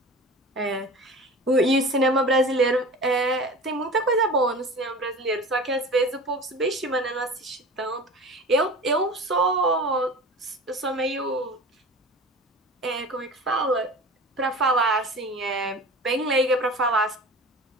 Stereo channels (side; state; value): both; normal; correlation 0.36